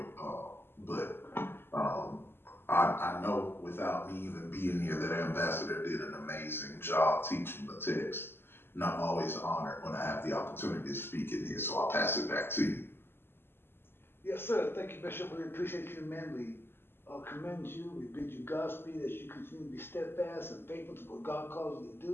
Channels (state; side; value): late; right; 0.11 ms